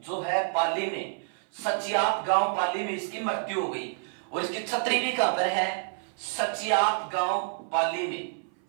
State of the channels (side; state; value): left; silent; 56 dB below the other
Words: है पाली में, सचियाप गांव पाली में इसकी मृत्यु हो गई। और इसकी छतरी भी कहां पर है? सचियाप गांव पाली में।